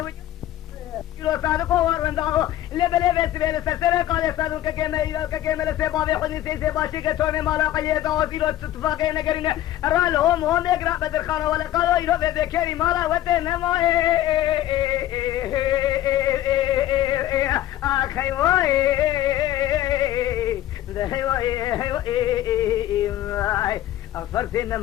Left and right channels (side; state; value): right; quieter; 13.4 dB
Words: كيلو صادقو وارنداغو لبلي بيسوي لسرسري قال يسادون ككيمة لسيبابي حدي سيسي باشي كتوني مالا قيداو كيلو اتفاقين نقرين رالهم هم يقرأ بدر خالو ولا قالو يلو بيكيري مالا وتنمو اخي واي ده واي أغفرتنا